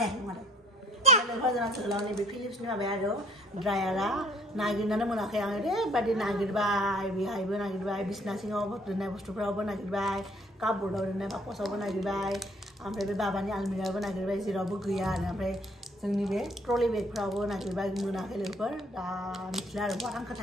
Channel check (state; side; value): normal; both; correlation 0.59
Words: नङा लोगोफोर जोंना जोहोलावनि बे फिलिप्सनि माबाया आरो ड्रायारा नागिरनानै मोनाखै आं ओरैबायदि नागिरबाय बेहायबो नागिरबाय बिसना सिङाव दोननाय बुस्थुफ्रावबो नागिरबाय कापबोर्डआव दोननाय बाकसावबो नागिरबाय ओमफ्राय बे बाबानि आलमिरायावबो नागिरबाय जेरावबो गैया आरो ओमफ्राय जोंनि बे ट्रलि बेगफ्रावबो नागिरबाय मोनाखै लोगोफोर दा मिथिला आरो बहा